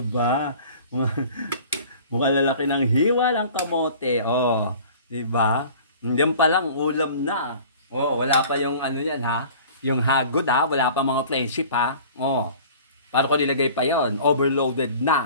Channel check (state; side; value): inverted; both; correlation -0.45